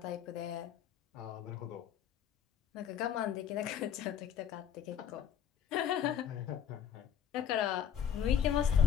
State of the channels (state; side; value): quieter; right; 8.8 dB